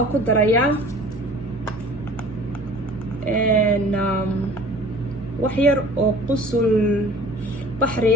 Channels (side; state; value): both; normal; correlation 0.46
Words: ku darayaa wax yar oo qusul